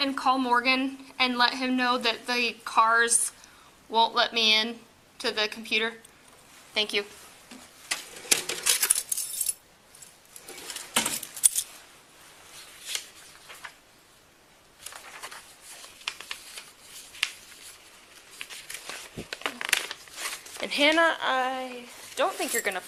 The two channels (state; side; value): identical; both; correlation 1.00